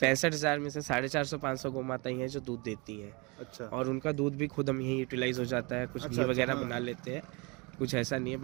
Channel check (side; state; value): left; quieter; 28.4 dB